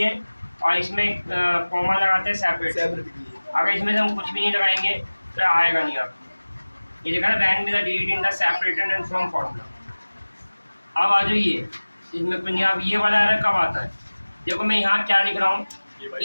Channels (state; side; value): inverted; both; correlation -1.00